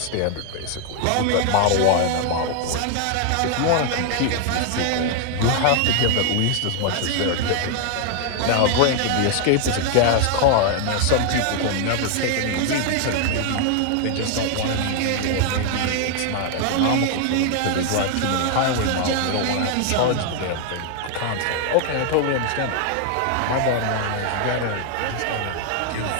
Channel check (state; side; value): different; both; correlation 0.00